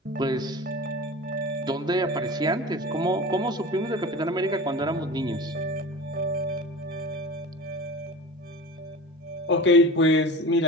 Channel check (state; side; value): normal; both; correlation 0.34